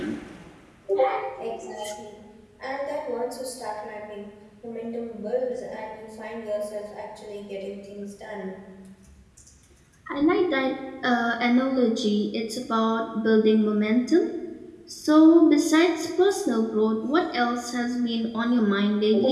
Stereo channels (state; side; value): identical; both; correlation 1.00